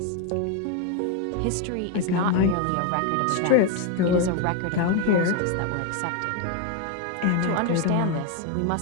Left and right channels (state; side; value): different; both; correlation 0.01